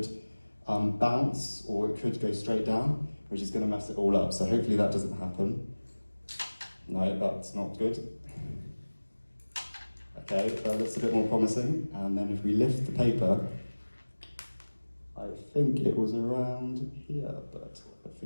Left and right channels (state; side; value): inverted; both; correlation -1.00